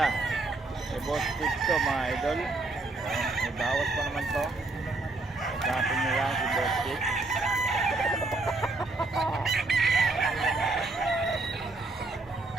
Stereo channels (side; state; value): left; quieter; 3.2 dB